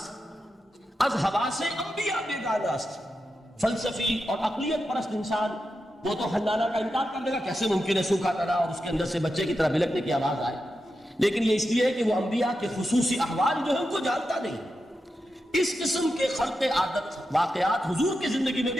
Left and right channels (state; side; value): normal; both; correlation 0.89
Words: از ہوا سے انبیاء بیگانہ است۔ فلسفی اور عقلیت پرست انسان وہ تو حنانہ کا انکار کر دے گا، کیسے ممکن ہے سوکھا تنا اور اس کے اندر سے بچے کی طرح بلکنے کی آواز آئے، لیکن یہ اس لیے ہے کہ وہ انبیاء کے خصوصی احوال جو ہے ان کو جانتا نہیں۔ اس قسم کے خلق عادت واقعات حضور کی زندگی میں